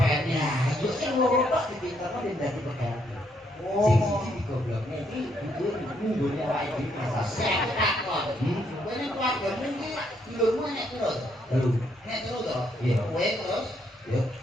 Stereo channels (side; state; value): both; normal; correlation 0.73